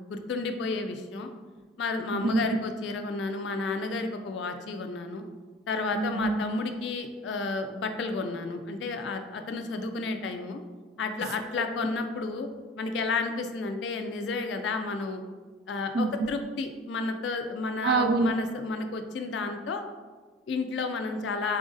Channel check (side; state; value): both; normal; correlation 0.42